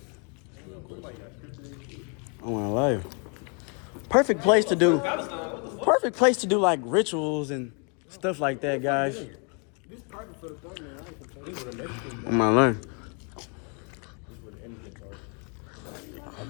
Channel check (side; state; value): right; quieter; 37.5 dB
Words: I wanna lie you. Perfect place to do like rituals and stuff like that, guys. I'm gonna learn.